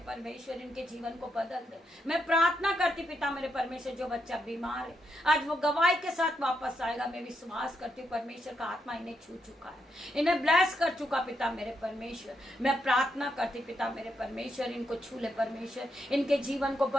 परमेश्वर, इनके जीवन को बदल दे। मैं प्रार्थना करती पिता मेरे परमेश्वर, जो बच्चा बीमार है आज वो गवाही के साथ वापस आएगा। मैं विश्वास करती हूँ परमेश्वर का आत्मा इन्हें छू चुका है, इन्हें ब्लेस कर चुका पिता मेरे परमेश्वर। मैं प्रार्थना करती पिता मेरे परमेश्वर, इनको छू ले परमेश्वर, इनके जीवन को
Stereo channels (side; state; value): both; normal; correlation 0.80